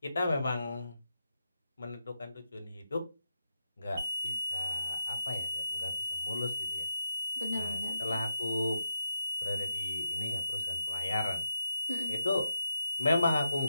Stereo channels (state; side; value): inverted; both; correlation -0.83